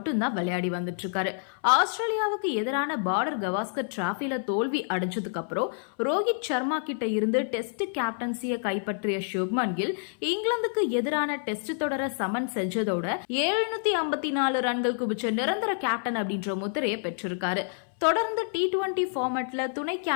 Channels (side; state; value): right; silent; 59 dB below the other